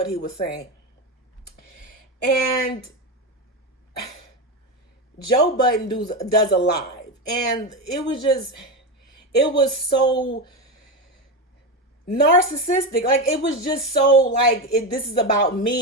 he was saying. And Joe Budden does a live. And it was so narcissistic. Like, it was just so like, this is about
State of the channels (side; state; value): both; normal; correlation 0.15